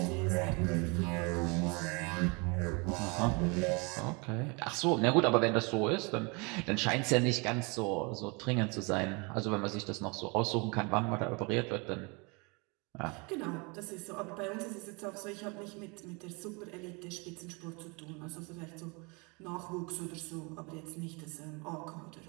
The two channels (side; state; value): left; quieter; 30.1 dB